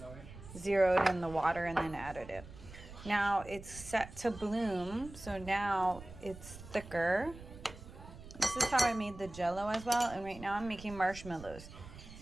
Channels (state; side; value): noise; right; rumble, 15 dB below the sound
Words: Zeroed in the water and then added it. Now it's set to bloom, so now it's thicker. This is how I made the jello as well, and right now I'm making marshmallows.